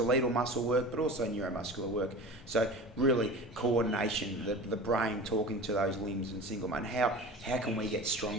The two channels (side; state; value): both; normal; correlation 0.36